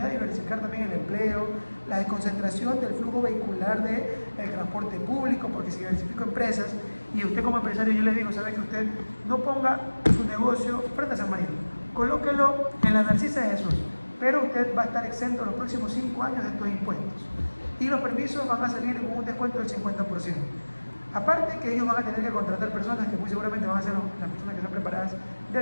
de diversificar también el empleo, la desconcentración del flujo vehicular del transporte público, porque si diversifico empresas, y usted como empresario, yo les digo, sabe que usted no ponga su negocio frente a San Marino, colóquelo en la Narcisa de Jesús, pero usted va a estar exento los próximos 5 años de estos impuestos, y los permisos van a salir con un descuento del 50%. Aparte que ellos van a tener que contratar personas que muy seguramente van a ser las personas que están preparadas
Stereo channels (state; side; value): inverted; both; correlation -1.00